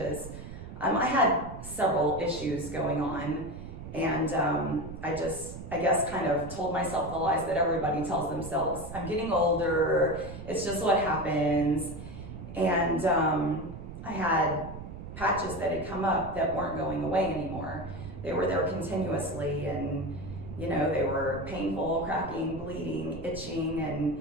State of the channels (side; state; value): right; noise; rumble, 11 dB below the sound